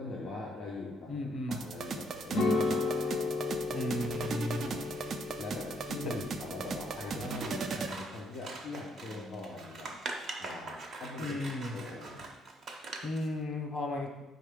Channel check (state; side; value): normal; both; correlation 0.70